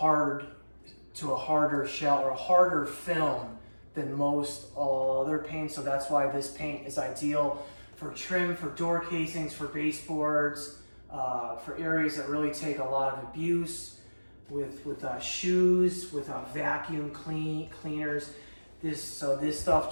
shell or a harder film than most other paints. So that's why this paint is ideal for trim, for door casings, for baseboards, for areas that really take a lot of abuse, with shoes, with vacuum cleaners. This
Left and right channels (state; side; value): inverted; both; correlation -1.00